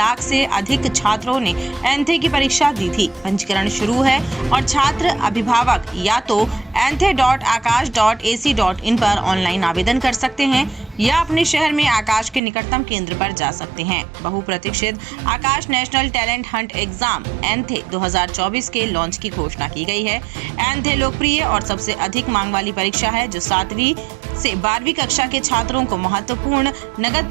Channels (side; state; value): left; drops out; at 12.4 s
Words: से अधिक छात्रों ने एंथे की परीक्षा दी थी। पंजीकरण शुरू है और छात्र अभिभावक या तो anthe.akash.ac.in पर ऑनलाइन आवेदन कर सकते हैं या अपने शहर में आकाश के निकटतम केंद्र पर जा सकते हैं। बहुप्रतीक्षित Aakash national talent hunt exam ANTHE 2024 के लॉन्च की घोषणा की गई है। एंथे लोकप्रिय और सबसे अधिक मांग वाली परीक्षा है जो 7वीं से 12वीं कक्षा के छात्रों को महत्वपूर्ण नगद